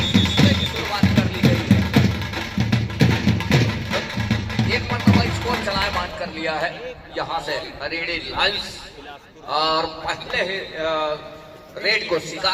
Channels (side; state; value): both; identical; correlation 1.00